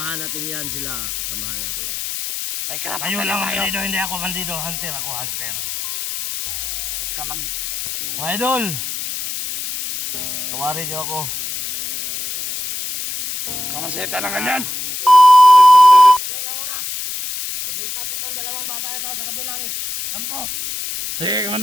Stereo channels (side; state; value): left; noise; hiss, 5 dB below the sound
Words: natin yan sila. Kasamahan natin. May karapatan Kayo na lang tayo. bandido, hindi ako bandido. Hunter ako, hunter. Huwag ka mag... Mga idol! Tawarin niyo ako. Kamaseta na nga dyan. Dali lang muna. Nilipat itong dalawang bata ito sa kabilang kampo. Sige,